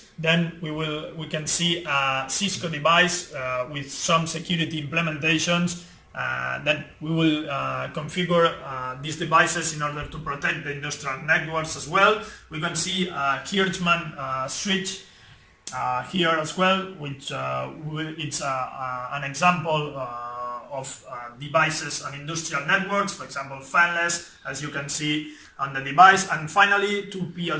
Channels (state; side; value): identical; both; correlation 1.00